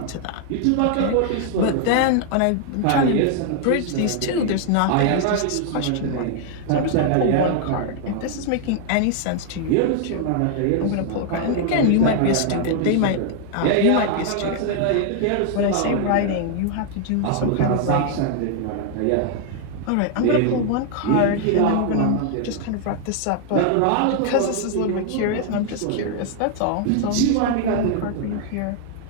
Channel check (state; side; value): different; both; correlation 0.00